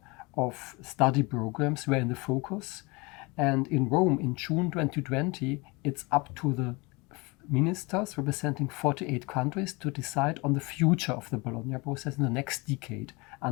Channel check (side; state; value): right; quieter; 26.3 dB